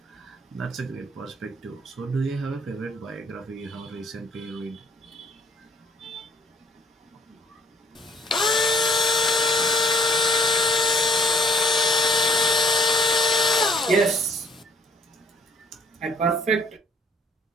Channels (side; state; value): both; normal; correlation 0.61